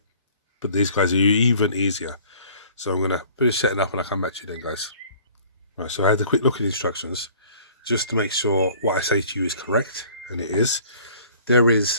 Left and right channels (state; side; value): inverted; both; correlation -0.52